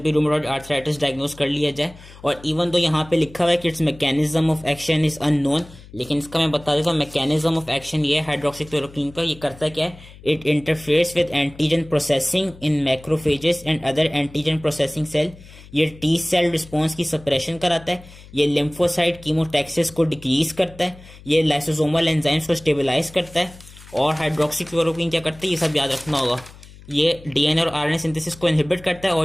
भी रूमेटॉइड आर्थराइटिस डायग्नोज कर लिया जाए। और इवन तो यहाँ पे लिखा हुआ है कि it's mechanism of action is unknown, लेकिन इसका मैं बता देता हूँ मैकेनिज्म ऑफ एक्शन ये है हाइड्रोक्सीक्लोरोक्विन का। ये करता क्या है, it interferes with antigen processing in macrophages and other antigen processing cell. ये टी सेल रिस्पॉन्स की सप्रेशन कराता है, ये लिम्फोसाइट कीमोटैक्सिस को डिक्रीज करता है, ये लाइसोसोमल एंजाइम्स को स्टेबलाइज करता है। और हाइड्रोक्सीक्लोरोक्विन क्या करता है, ये सब याद रखना होगा। ये डीएनए और आरएनए सिंथेसिस को इनहिबिट करता है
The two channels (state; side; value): noise; left; hum, 20 dB below the sound